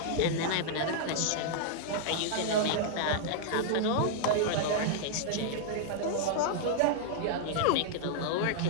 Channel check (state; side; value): different; both; correlation -0.01